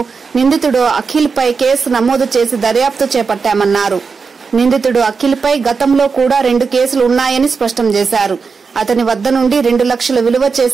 నిందితుడు అఖిల్ పై కేసు నమోదు చేసి దర్యాప్తు చేపట్టామన్నారు. నిందితుడు అఖిల్ పై గతంలో కూడా 2 కేసులు ఉన్నాయని స్పష్టం చేశారు. అతని వద్ద నుండి 2 లక్షల విలువ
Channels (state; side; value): quieter; left; 5.1 dB